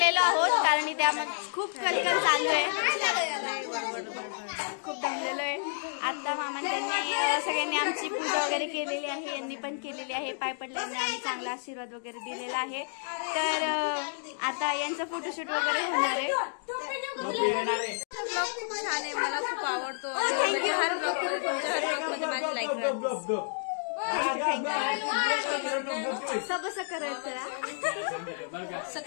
आहोत कारण इथे आम्हाला खूप कलकल चालू आहे, खूप दमलेलो आहे. आता मामांनी त्यांनी सगळ्यांनी आमची पूजा वगैरे केलेली आहे, यांनी पण केलेली आहे. पाय पडल्याने आम्ही चांगला आशीर्वाद वगैरे दिलेला आहे. तर आता यांचं फोटोशूट वगैरे होणार आहे. खूप छान आहे, मला खूप आवडतो. हर ब्लॉग मध्ये माझी लाईक सबसं करायचं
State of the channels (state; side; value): silent; right; digital silence